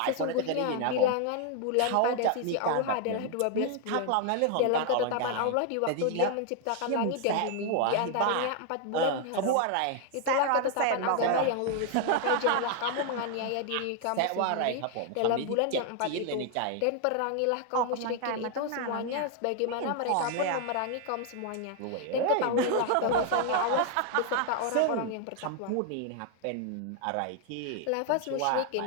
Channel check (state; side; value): different; both; correlation 0.00